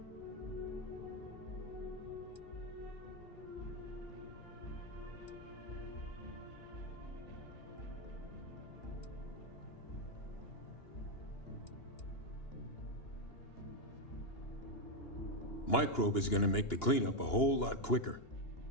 Microbe is gonna make the cleanup a whole lot quicker.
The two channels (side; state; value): right; late; 2.9 ms